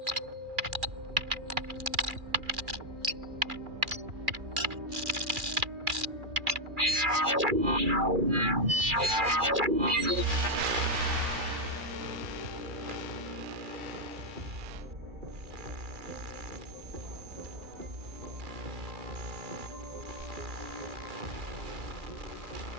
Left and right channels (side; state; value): left; late; 2.4 ms